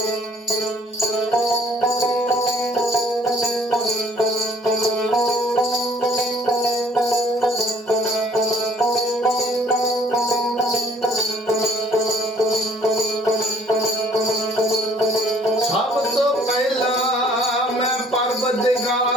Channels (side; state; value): both; normal; correlation 0.57